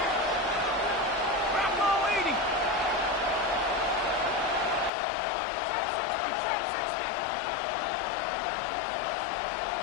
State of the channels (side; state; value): right; drops out; at 4.9 s